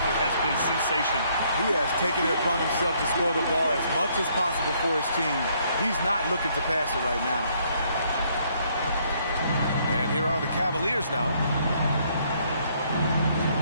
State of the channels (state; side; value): inverted; both; correlation -0.68